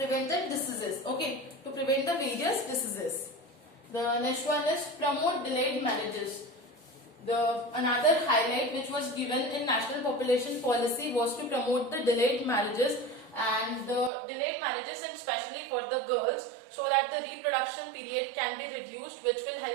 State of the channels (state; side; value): drops out; left; at 14.1 s